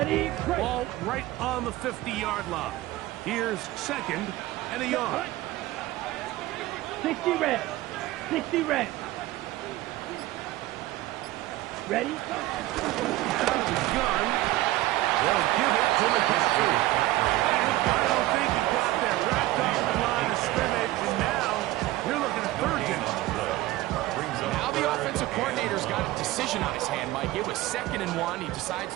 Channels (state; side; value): quieter; left; 16.9 dB